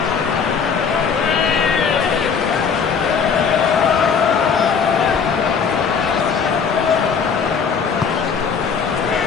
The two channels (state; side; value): quieter; right; 6.2 dB